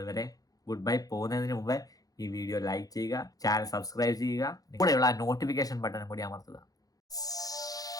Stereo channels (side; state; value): right; late; 0.18 ms